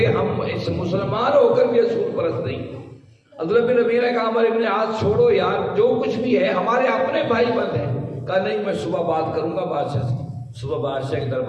ہم اس مسلمان ہو کر بھی اصول پرست نہیں. عبداللہ بن ربیعہ نے کہا عمر بن عاص چھوڑو یار، جو کچھ بھی ہے ہمارے اپنے بھائی بند ہیں. کہا نہیں میں صبح بات کروں گا بادشاہ سے. صبح بادشاہ کے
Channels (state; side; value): identical; both; correlation 1.00